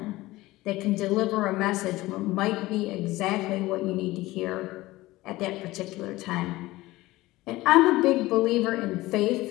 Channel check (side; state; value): right; quieter; 18.5 dB